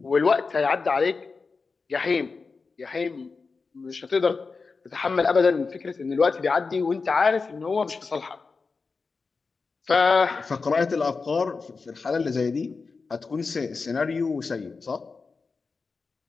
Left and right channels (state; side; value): quieter; right; 4.5 dB